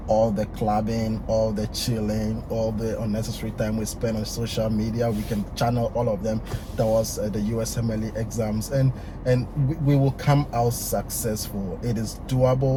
All the clubbing, all the chilling, all the unnecessary time we spend on social media, we can channel all of them towards the USMLE exams, and we will come out successful. It is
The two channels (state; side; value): identical; both; correlation 1.00